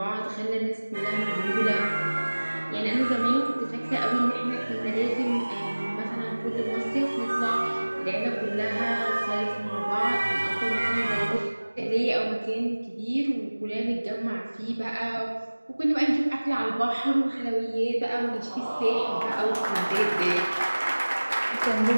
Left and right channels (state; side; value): inverted; both; correlation -1.00